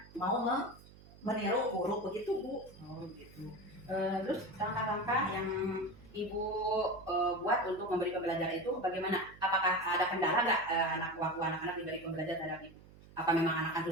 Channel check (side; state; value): right; noise; hum, 22 dB below the sound